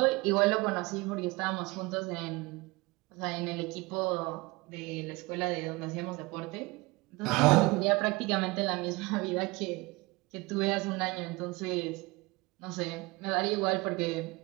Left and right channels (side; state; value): left; quieter; 23.5 dB